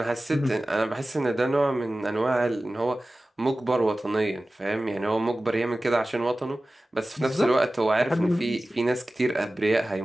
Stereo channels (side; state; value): both; normal; correlation 0.96